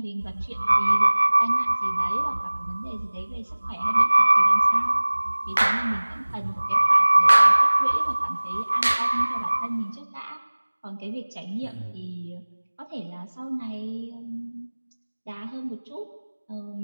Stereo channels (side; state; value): both; inverted; correlation -1.00